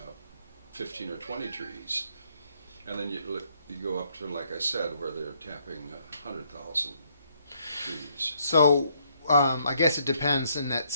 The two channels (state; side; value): inverted; both; correlation -0.70